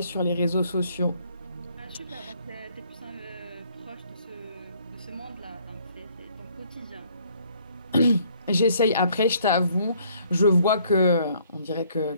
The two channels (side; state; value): both; inverted; correlation -0.63